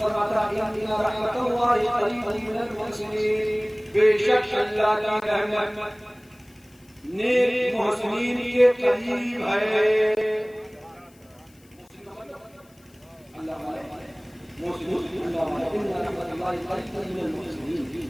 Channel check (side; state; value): left; noise; hiss, 30 dB below the sound